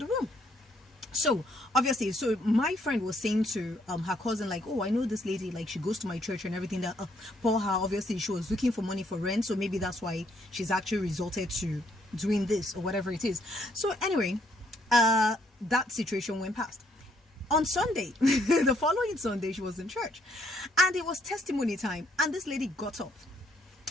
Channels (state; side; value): normal; both; correlation 0.70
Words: room. So obviously, so my friend was saying to her cousin, like, oh, I know this lady, like she goes to my church and everything, that for her obviously she was looking for money for rent, so maybe that's why she's actually resorted to doing this or whatever it is. So anyway, that situation went past. On Sunday, the following Sunday, she was in church and it was testimony time, and this lady got up.